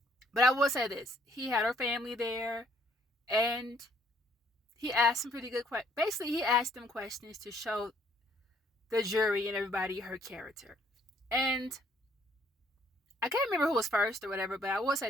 But I will say this: he had her family there, and he asked some pretty good questions. Basically, he asked them questions to show the jury and everybody her character. And I can't remember who was first or whatever, but I will say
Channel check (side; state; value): both; normal; correlation 0.65